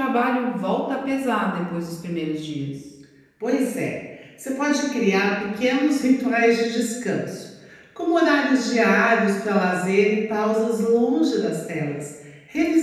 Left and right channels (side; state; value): both; identical; correlation 1.00